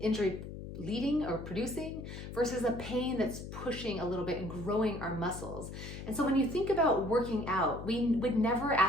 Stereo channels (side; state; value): left; noise; hum, 10 dB below the sound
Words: leading or producing, versus a pain that's pushing a little bit and growing our muscles. And so when you think about working out, we would never